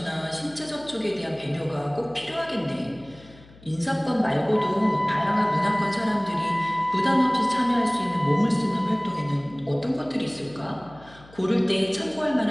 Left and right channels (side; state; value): left; noise; hum, 23 dB below the sound